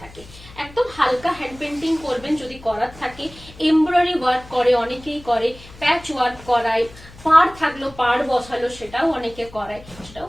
থাকে। একদম হালকা হ্যান্ড পেন্টিং করবেন যদি করার থাকে, এমব্রয়ডারি ওয়ার্ক করে অনেকেই করে, প্যাচ ওয়ার্ক করায়, পাড় থাকলো পাড় বসালো সেটাও অনেকে করায়, সেটাও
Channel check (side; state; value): left; noise; hum, 20 dB below the sound